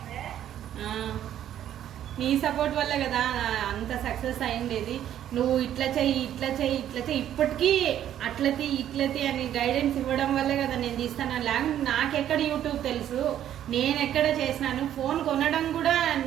నీ సపోర్ట్ వల్ల కదా అంత సక్సెస్ అయిండేది. నువ్వు ఇట్లా చెయ్యి ఇప్పటికీ ఇట్లతి అని గైడెన్స్ ఇవ్వడం వల్లే కదా నేను తీస్తాను. లేకపోతే నాకెక్కడ యూట్యూబ్ తెలుసు, నేను ఎక్కడ చేసినాను. ఫోన్ కొనడం కూడా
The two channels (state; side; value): quieter; left; 11.0 dB